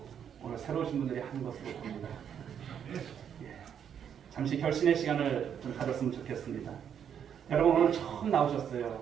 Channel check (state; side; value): quieter; left; 8.4 dB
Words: 오늘 새로 오신 분들이 하는 것으로 봅니다. 예. 잠시 결신의 시간을 좀 가졌으면 좋겠습니다. 여러분 오늘 처음